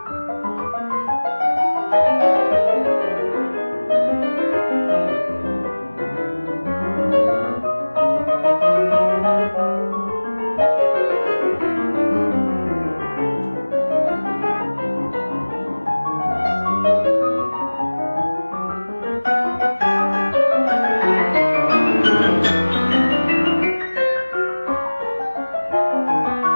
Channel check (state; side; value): inverted; both; correlation -1.00